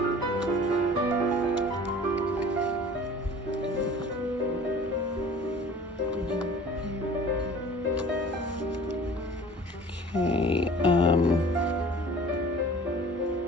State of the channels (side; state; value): both; normal; correlation 0.45